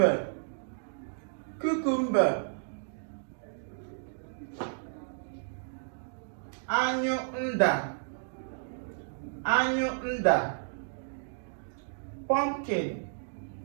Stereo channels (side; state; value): left; silent; digital silence